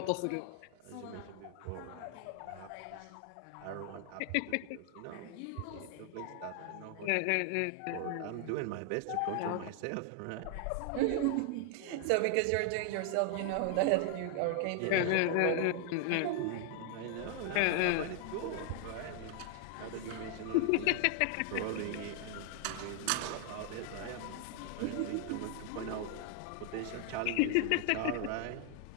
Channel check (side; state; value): both; different; correlation 0.00